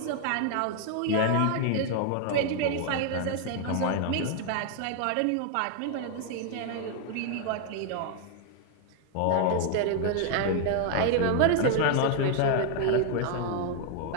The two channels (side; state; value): both; different; correlation 0.00